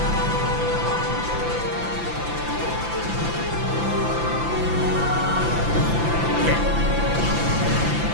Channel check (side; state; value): left; late; 5.9 ms